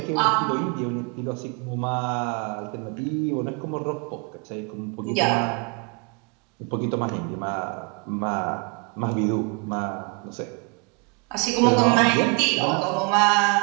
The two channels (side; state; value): left; quieter; 33.1 dB